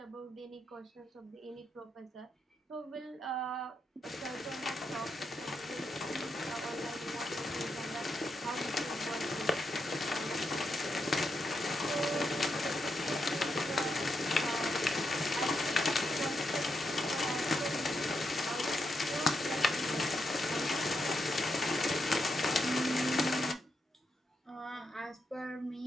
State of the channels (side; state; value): both; normal; correlation 0.83